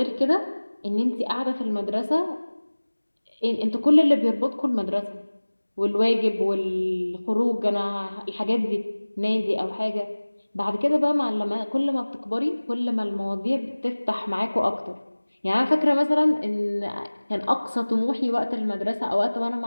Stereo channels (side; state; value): both; inverted; correlation -1.00